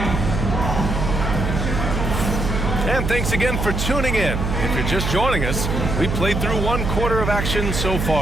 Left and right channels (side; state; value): right; noise; hum, 2 dB below the sound